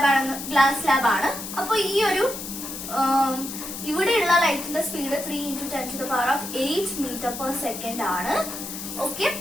ലാബാണ്. അപ്പൊ ഈ ഒരു ഇവിടെയുള്ള ലൈറ്റിന്റെ സ്പീഡ് 3 × 10⁸ മീറ്റർ/സെക്കൻഡ് ആണ്. ഓക്കെ,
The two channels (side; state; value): left; noise; hiss, 8 dB below the sound